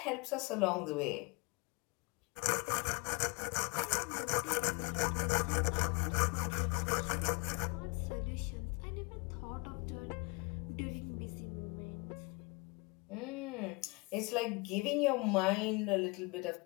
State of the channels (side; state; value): right; quieter; 28.2 dB